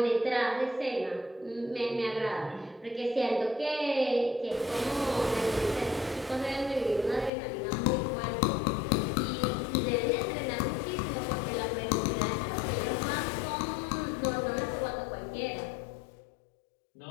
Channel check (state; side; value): drops out; right; at 7.3 s